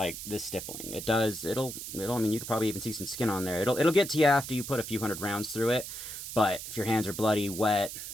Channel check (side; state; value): right; noise; hiss, 8 dB below the sound